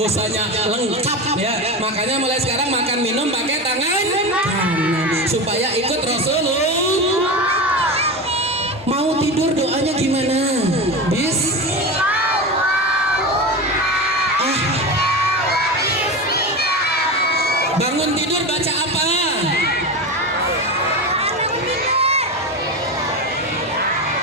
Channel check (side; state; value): both; normal; correlation 0.22